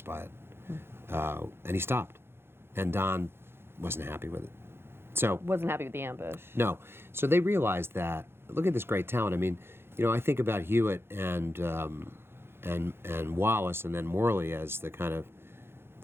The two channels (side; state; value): left; late; 0.11 ms